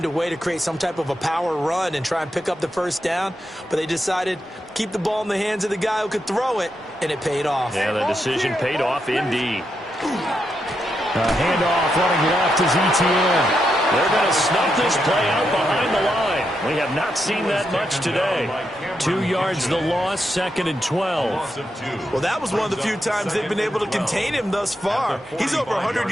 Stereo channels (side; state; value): both; normal; correlation 0.83